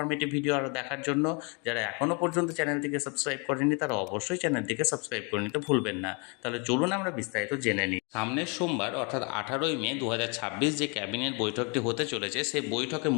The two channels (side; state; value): right; quieter; 33.4 dB